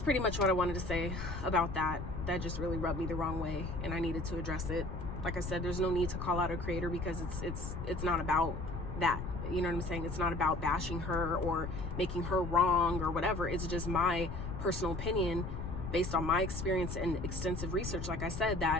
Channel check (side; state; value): left; noise; rumble, 6 dB below the sound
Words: pretty much what I wanted to say about that. That just really rubbed me the wrong way, and I needed to address it. Like I said, there's no need to call out a creator because it's not about that. You know what I'm saying? It's not about bashing her or making her wrong or whatever. It's just my personal opinion based on my experience and extensive research, like I said,